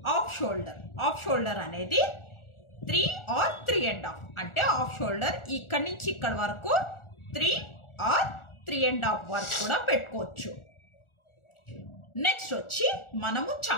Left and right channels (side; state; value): right; late; 1.4 ms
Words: హాఫ్ షోల్డర్ అనేది 3 or 3.5 అంటే హాఫ్ షోల్డర్ ఇక్కడి నుంచి ఇక్కడి వరకు 3 or 3.5 వరకు కూడా పెట్టుకోవచ్చు. నెక్స్ట్ వచ్చి మనము